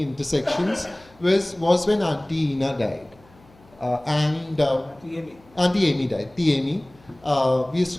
intersections was when Auntie Ina died. Auntie Amy died. Amy. We used to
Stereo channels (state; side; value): noise; left; hum, 28 dB below the sound